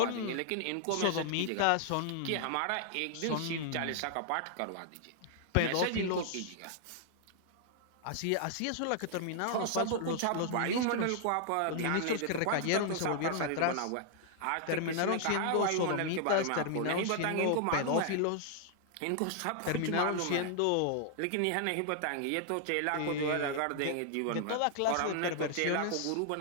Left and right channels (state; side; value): different; both; correlation -0.01